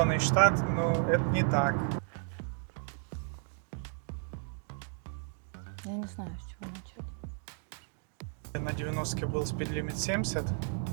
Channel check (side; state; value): left; silent; 55 dB below the other